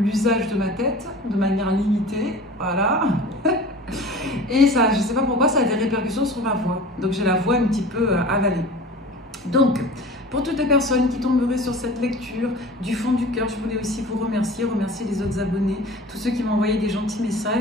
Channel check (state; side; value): normal; both; correlation 0.39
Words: de ma tête de manière limitée. Voilà. Et ça, je ne sais pas pourquoi, ça a des répercussions sur ma voix. Donc j'ai la voix un petit peu avalée. Donc, pour toutes les personnes qui tomberaient sur cette lecture, du fond du cœur, je voulais aussi vous remercier les autres abonnés, tous ceux qui m'ont envoyé des gentils